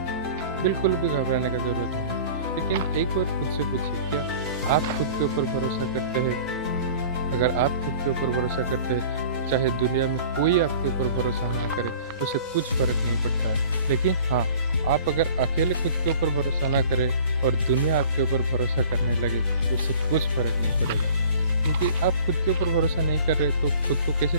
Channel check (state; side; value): inverted; both; correlation -0.46